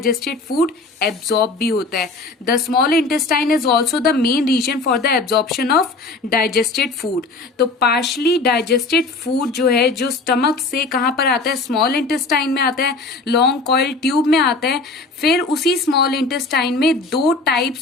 फूड एब्जॉर्ब भी होता है। The small intestine is also the main reason for the absorption of digested food. तो पार्शली डाइजेस्टेड फूड जो है जो स्टमक से कहां पर आता है? स्मॉल इंटेस्टाइन में आता है, लॉन्ग कॉइल ट्यूब में आता है। फिर उसी स्मॉल इंटेस्टाइन में 2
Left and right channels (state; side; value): quieter; right; 3.6 dB